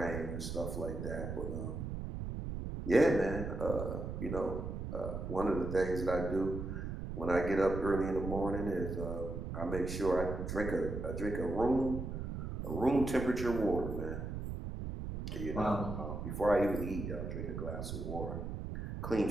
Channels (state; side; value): noise; right; rumble, 5 dB below the sound